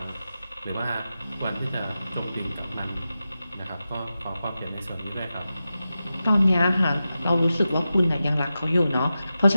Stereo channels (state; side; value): inverted; both; correlation -0.92